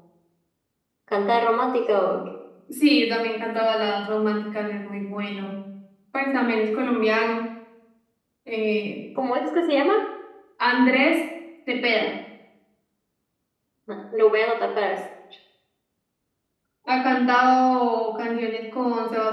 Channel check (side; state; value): both; identical; correlation 1.00